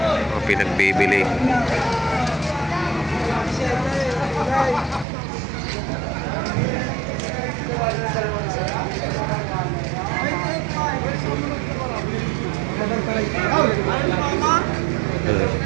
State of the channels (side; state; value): left; drops out; at 5.1 s